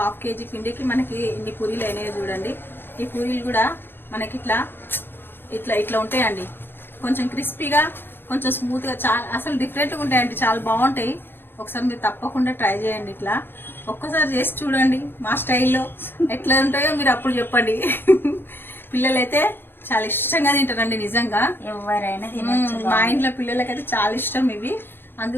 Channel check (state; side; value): late; right; 0.10 ms